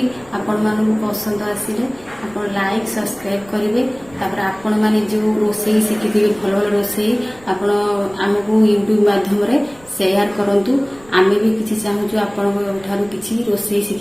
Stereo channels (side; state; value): right; noise; rumble, 25 dB below the sound